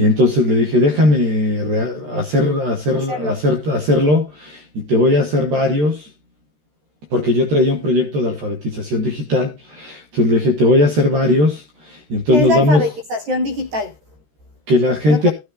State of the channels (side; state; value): left; late; 13 ms